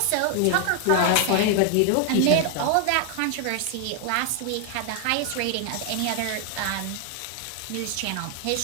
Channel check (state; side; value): different; both; correlation 0.00